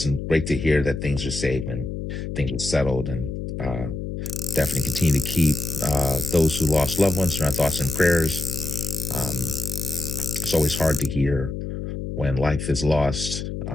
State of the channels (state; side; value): noise; left; hum, 6 dB below the sound